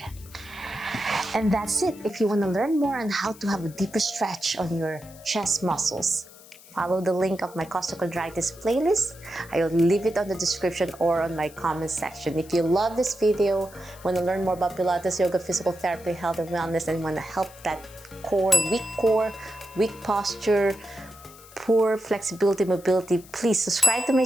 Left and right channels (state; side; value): noise; left; hiss, 21 dB below the sound